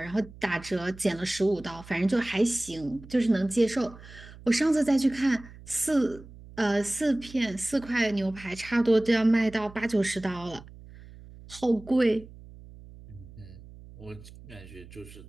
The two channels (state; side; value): noise; right; hum, 19 dB below the sound